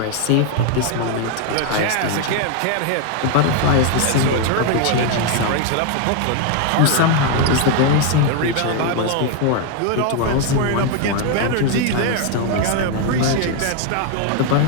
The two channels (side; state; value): both; different; correlation 0.01